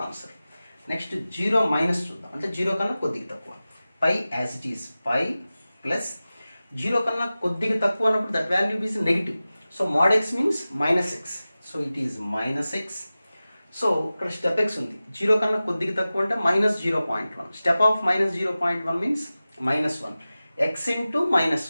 answer. Next 0 minus చూద్దాం, అంటే 0 కన్నా కొద్దిగా తక్కువ, pi as it is pi plus 0 కన్నా కొద్దిగా తక్కువ అన్నప్పుడు that value is negative. So mod x means minus X, so it is minus X. So ఇక్కడ స్టెప్ ఎక్స్ ఉంది, 0 కన్నా కొద్దిగా తక్కువ అంటే minus 0.1, step of minus 0.1 means minus 1, x into minus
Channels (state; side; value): inverted; both; correlation -0.96